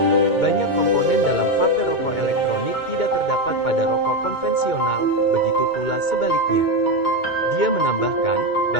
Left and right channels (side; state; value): right; late; 2.2 ms